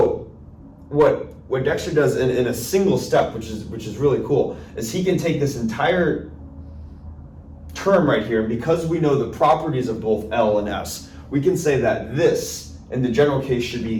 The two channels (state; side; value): identical; both; correlation 1.00